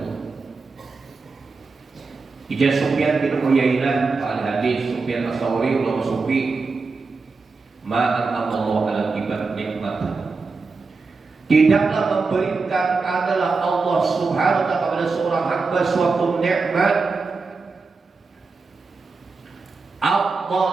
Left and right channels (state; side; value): quieter; left; 4.2 dB